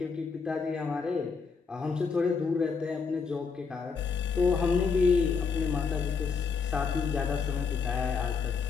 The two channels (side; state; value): right; quieter; 5.4 dB